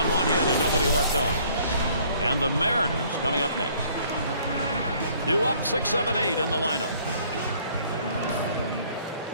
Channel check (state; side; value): inverted; both; correlation -0.59